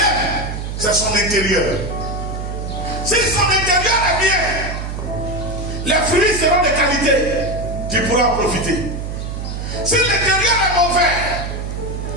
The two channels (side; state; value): right; noise; hum, 5 dB below the sound